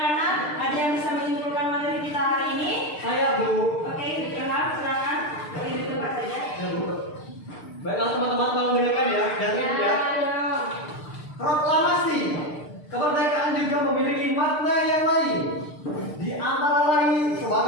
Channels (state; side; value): late; right; 6.7 ms